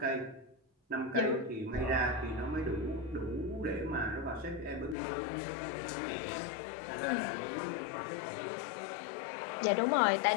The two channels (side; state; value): right; drops out; at 5.0 s